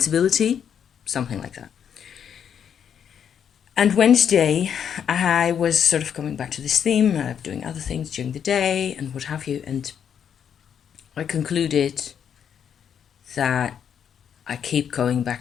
something like that. And Wednesday, I was sort of coming back to this theme, doing other things during the day and what have you, and I concluded that I keep going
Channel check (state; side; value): quieter; right; 8.3 dB